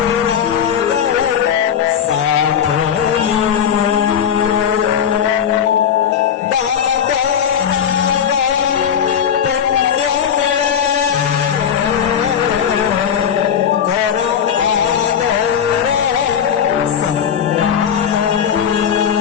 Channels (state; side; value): quieter; right; 8.4 dB